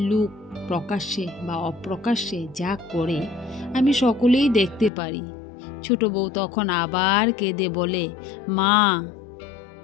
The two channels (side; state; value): right; drops out; at 4.9 s